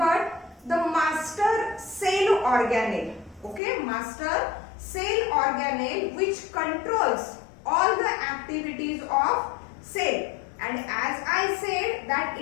the master cell organelle. Okay, master cell organelle which controls all the activities of cell. And as I said that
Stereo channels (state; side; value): drops out; right; at 3.6 s